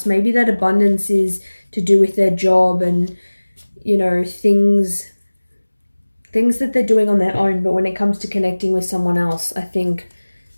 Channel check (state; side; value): inverted; both; correlation -1.00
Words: Maybe that abundance is to do with their job and, you know, things that they're doing on their own, but when it comes to connecting with someone else, I think